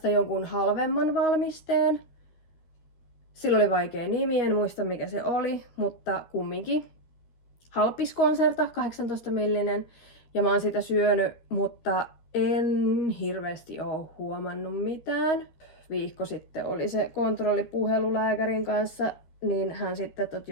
jonkun halvemman valmisteen. Sillä oli vaikea nimi, en muista mikä se oli, mutta kumminkin. Halpis Concerta, 18 millinen. Ja mä oon sitä syönyt, mutta en hirveästi oo huomannut mitään. Viikko sitten oli se kontrollipuhelu lääkärin kanssa, niin hän sitten, että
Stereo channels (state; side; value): late; right; 13 ms